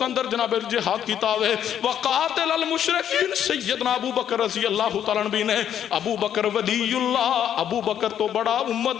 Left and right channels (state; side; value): quieter; right; 9.8 dB